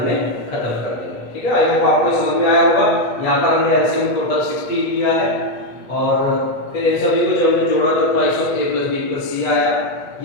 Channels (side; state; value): right; late; 8.2 ms